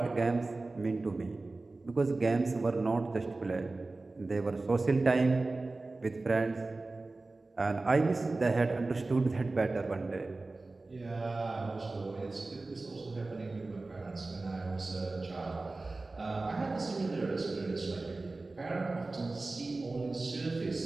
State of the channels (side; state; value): left; quieter; 3.3 dB